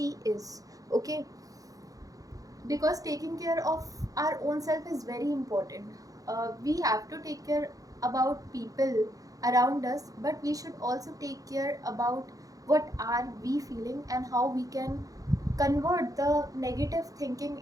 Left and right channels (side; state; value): left; late; 0.17 ms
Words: is. Okay, because taking care of our own self is very important. We have to take care about people around us, but we should also take care about what are we feeling and how we can convert the negative thinking